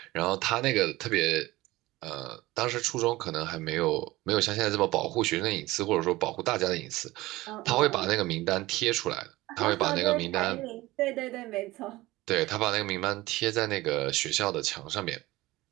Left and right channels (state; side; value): quieter; left; 18.9 dB